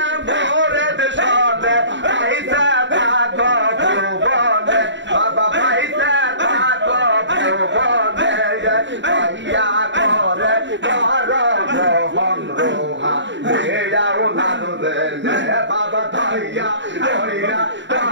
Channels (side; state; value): left; late; 0.53 ms